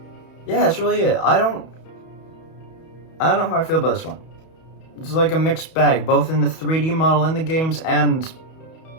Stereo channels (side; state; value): right; late; 31 ms